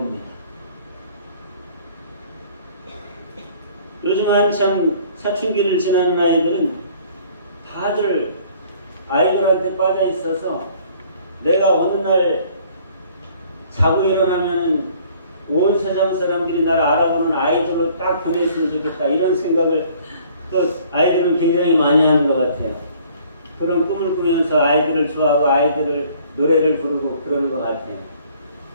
요즘 한참 사춘기를 지나는 아이들은 다들 아이들한테 빠져 있어서 내가 어느 날 자고 일어나면 온 세상 사람들이 나를 알아보는 아이들로 딱 변했으면 좋겠다. 이런 생각을 또 아이들은 굉장히 많이 하는 것 같아요. 그런 꿈을 꾸면서 아이들을 좋아하고 아이들을 노래를 부르고 그러는 것 같아요.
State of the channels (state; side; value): inverted; both; correlation -0.56